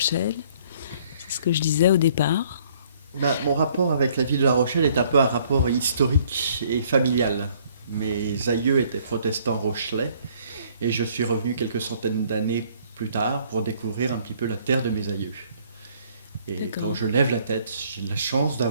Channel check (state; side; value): inverted; both; correlation -0.61